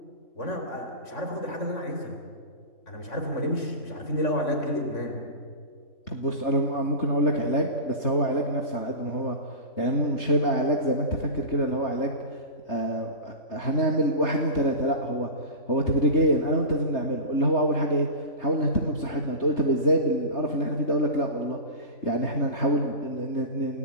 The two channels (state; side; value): late; right; 3.3 ms